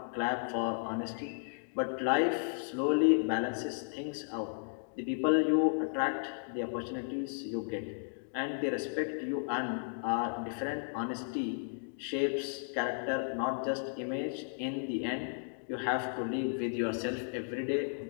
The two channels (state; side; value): silent; right; digital silence